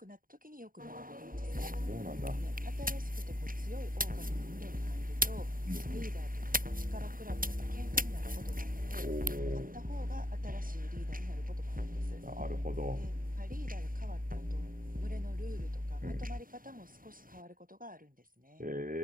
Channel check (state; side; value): late; left; 0.41 ms